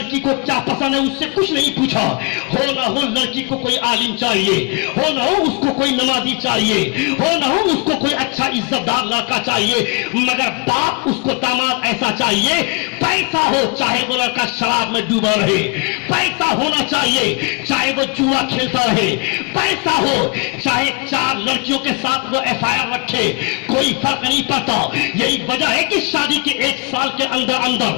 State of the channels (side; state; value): right; quieter; 30.8 dB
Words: کو کیا پسند ہے اس سے کچھ نہیں پوچھا. ہو نہ ہو لڑکی کو کوئی عالم چاہیے, ہو نہ ہو اس کو کوئی نمازی چاہیے, ہو نہ ہو اس کو کوئی اچھا عزت دار لڑکا چاہیے, مگر باپ اس کو داماد ایسا چاہیے پیسہ ہو چاہے وہ لڑکا شراب میں ڈوبا رہے, پیسہ ہونا چاہیے چاہے وہ جوا کھیلتا رہے, پیسہ ہو چاہے 4 لڑکیوں کے ساتھ وہ FIR رکھے, کوئی فرق نہیں پڑتا. یہی وجہ ہے کہ شادی کے 1 سال کے اندر اندر